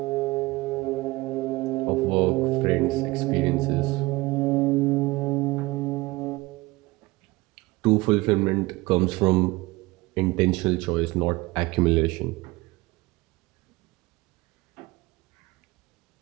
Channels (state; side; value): quieter; left; 21.3 dB